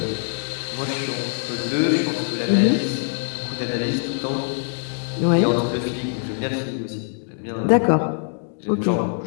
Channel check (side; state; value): right; silent; digital silence